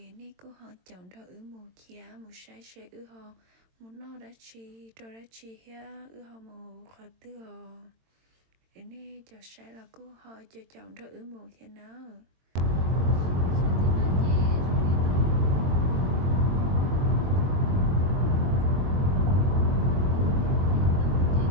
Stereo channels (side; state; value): left; late; 22 ms